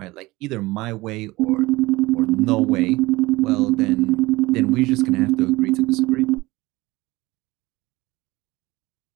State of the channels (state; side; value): quieter; left; 20.5 dB